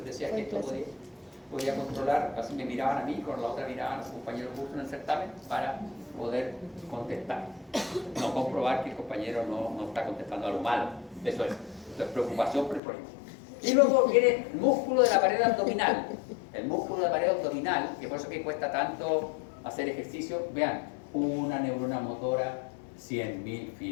decía que esto podía controlar, así me miraban a mí, con la otra miraban a su compañero justo en el certamen para poder contestar. No comprobar que el compañero no está contestando algo malo. Eso es preocupación por el problema. Y luego viene el músculo de la pared abdominal. El músculo de la pared abdominal, que por eso que cuesta tanto hacer ejercicio. Vean, una neurona motora, 100.000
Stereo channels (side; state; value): right; drops out; at 12.8 s